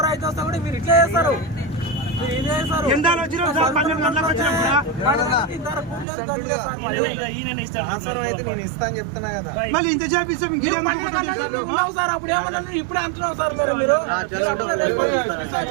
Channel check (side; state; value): left; drops out; at 6.1 s